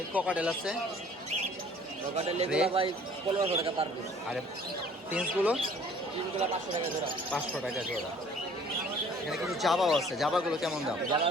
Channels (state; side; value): normal; both; correlation 0.53